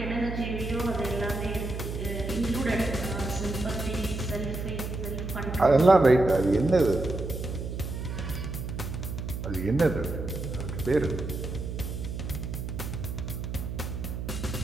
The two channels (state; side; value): noise; right; hum, 5 dB below the sound